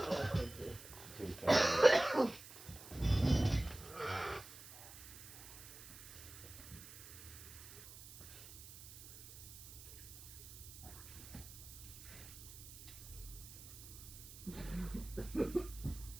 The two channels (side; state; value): right; noise; hiss, 15 dB below the sound